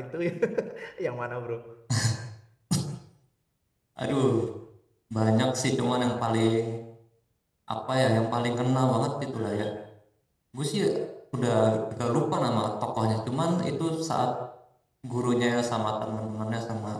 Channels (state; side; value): identical; both; correlation 1.00